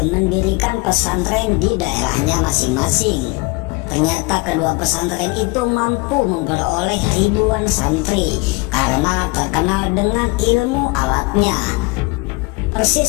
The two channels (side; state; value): right; quieter; 25.5 dB